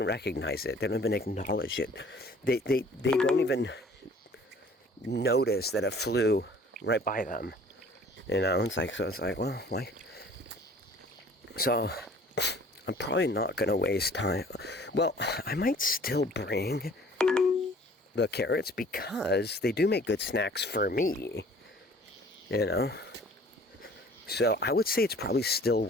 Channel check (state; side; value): normal; both; correlation 0.51